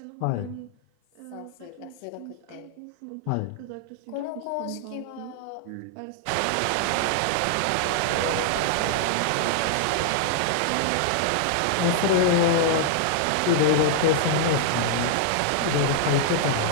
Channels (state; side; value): different; both; correlation -0.01